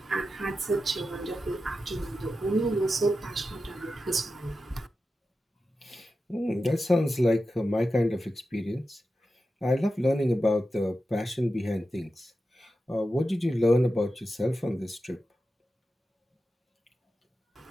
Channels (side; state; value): both; normal; correlation 0.91